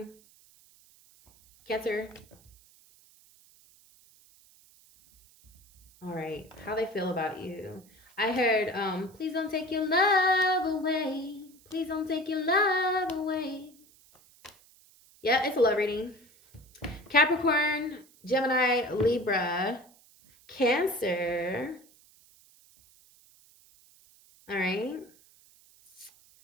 Cancer. All right. How they feel about you. I heard, please don't take your love away. Please don't take your love away. Yeah, it's a love reading. Capricorn, Gemini, Libra, Cancer. All right.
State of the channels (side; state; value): right; noise; hiss, 28 dB below the sound